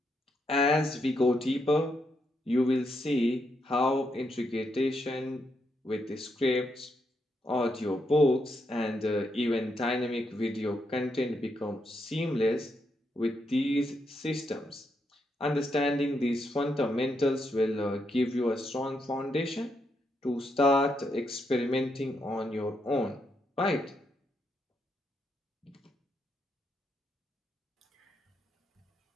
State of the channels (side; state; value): both; normal; correlation 0.80